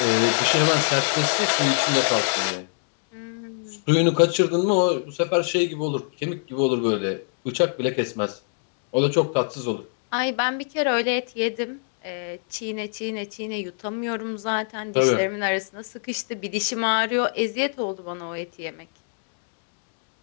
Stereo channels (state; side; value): silent; right; digital silence